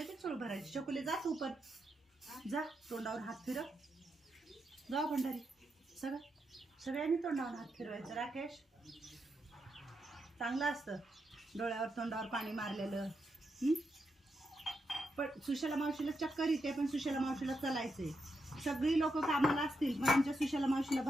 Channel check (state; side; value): normal; both; correlation 0.84